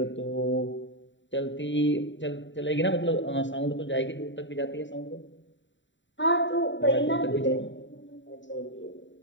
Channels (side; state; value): right; late; 0.54 ms